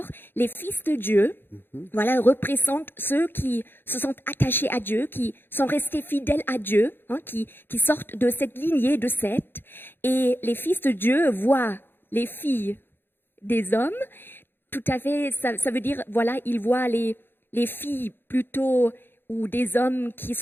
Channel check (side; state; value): right; late; 0.10 ms